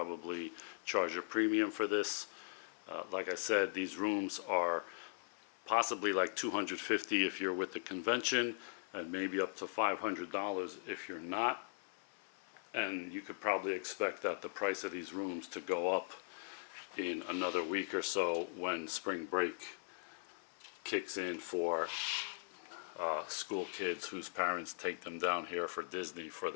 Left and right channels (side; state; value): right; silent; 51 dB below the other